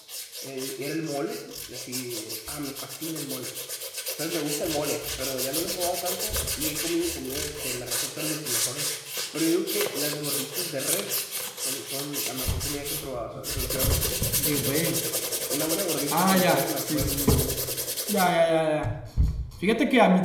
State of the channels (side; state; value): both; identical; correlation 1.00